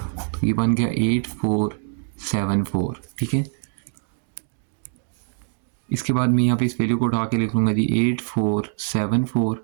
ये बन गया 8474, ठीक है। इसके बाद मैं यहाँ पे इस वैल्यू को उठा के लिख लूँगा जी 8474,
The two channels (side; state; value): left; silent; digital silence